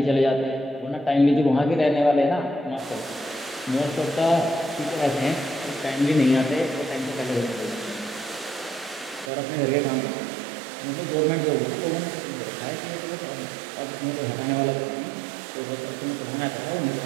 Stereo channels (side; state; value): left; drops out; at 9.3 s